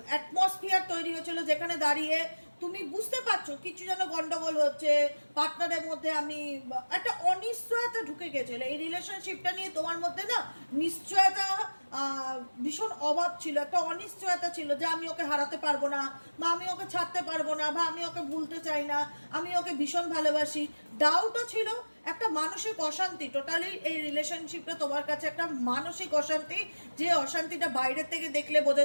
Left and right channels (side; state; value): both; inverted; correlation -1.00